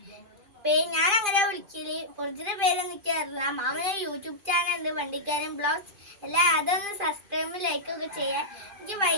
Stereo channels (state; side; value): late; left; 2.5 ms